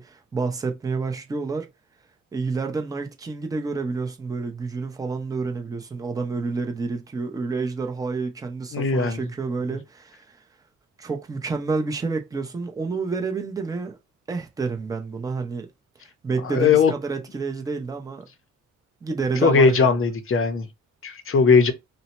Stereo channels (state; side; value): normal; both; correlation 0.46